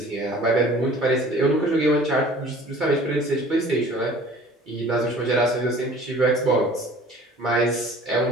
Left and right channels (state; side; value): normal; both; correlation 0.48